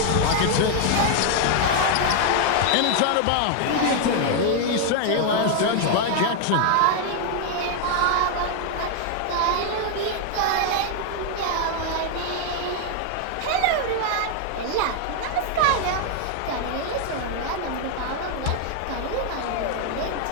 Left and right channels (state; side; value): different; both; correlation 0.00